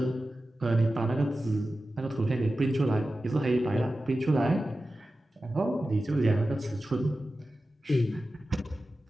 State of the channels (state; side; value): normal; both; correlation 0.94